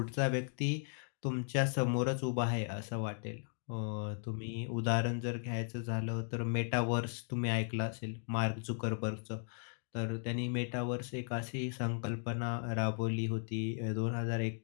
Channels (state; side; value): silent; right; digital silence